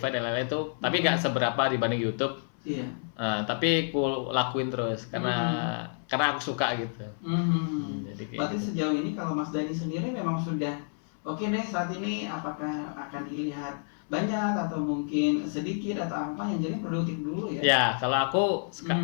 dan lain-lain itu, tapi nggak seberapa dibanding YouTube. Iya. Tapi ku lakuin terus karena aku suka gitu. Jadi berarti gitu. Sejauh ini kalau Mas Dani sendiri memang sudah oke deh saat ini, apakah akan dilihat banyak atau mungkin sedikit atau apa yang jadi produktif dulu ya? Ya, kalau aku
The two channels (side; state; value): right; silent; 58 dB below the other